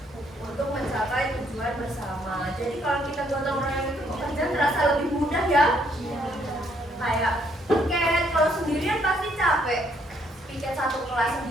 untuk mencapai tujuan bersama. Jadi kalau kita gotong royong itu pekerjaan terasa lebih mudah ya. Kayak piket, kalau sendirian pasti capek. Piket satu kelas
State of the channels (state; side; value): normal; both; correlation 0.69